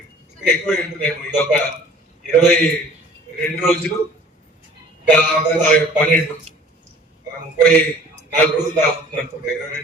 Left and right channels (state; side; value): normal; both; correlation 0.49